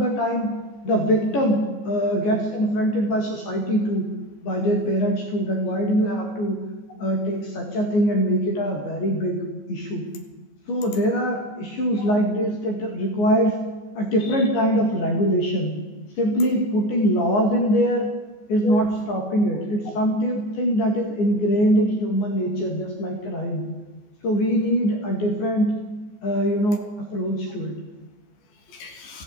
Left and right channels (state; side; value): late; right; 14 ms